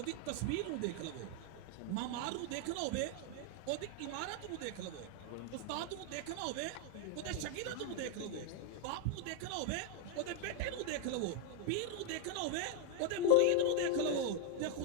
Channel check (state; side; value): different; both; correlation 0.01